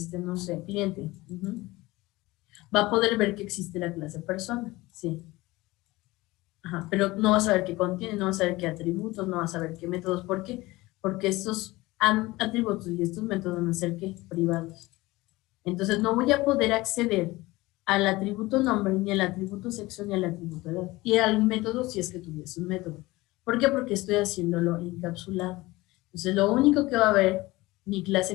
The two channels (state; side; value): quieter; right; 20.2 dB